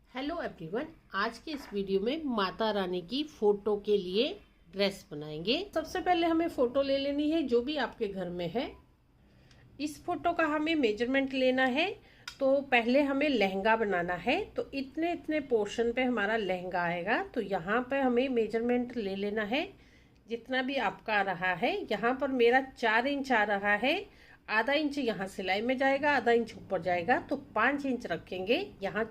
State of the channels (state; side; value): identical; both; correlation 1.00